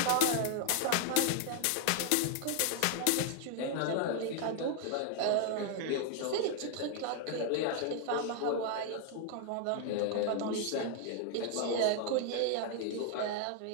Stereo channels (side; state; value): both; different; correlation 0.00